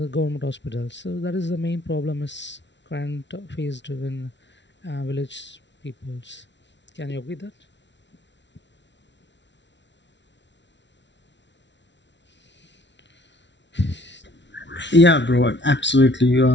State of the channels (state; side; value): late; right; 0.52 ms